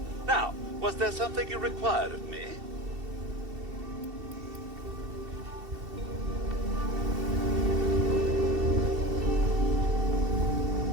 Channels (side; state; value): left; late; 2.7 ms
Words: Now, was there something you required of me?